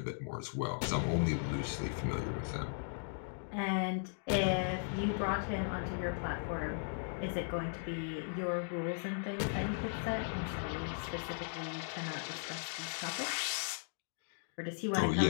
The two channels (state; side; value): silent; right; digital silence